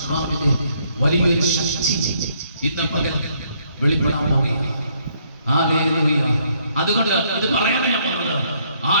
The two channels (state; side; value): inverted; both; correlation -0.69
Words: വലിയൊരു ശക്തി ഇന്ന് പകൽ വെളിപ്പെടാൻ പോവുകയാണ്. ഹല്ലേലൂയ. അതുകൊണ്ട് ഇത് പറയാനാണ് ഞാൻ പറഞ്ഞത്.